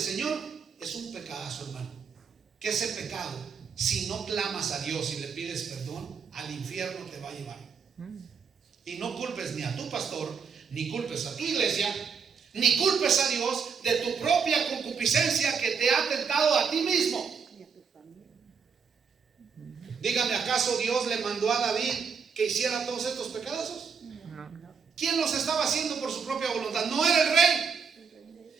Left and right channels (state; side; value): quieter; left; 6.1 dB